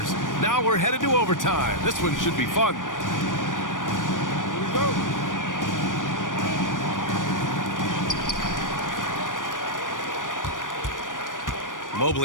Now we're headed to overtime. This one should be fun. Here we go.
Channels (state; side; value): late; right; 0.88 ms